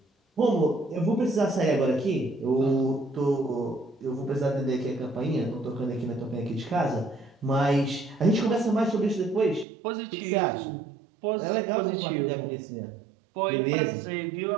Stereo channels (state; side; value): drops out; left; at 9.7 s